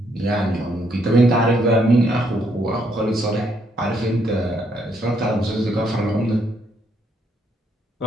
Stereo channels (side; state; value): both; normal; correlation 0.72